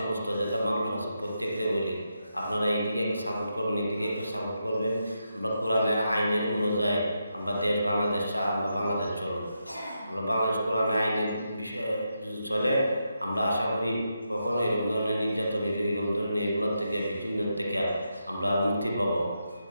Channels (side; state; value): both; inverted; correlation -0.84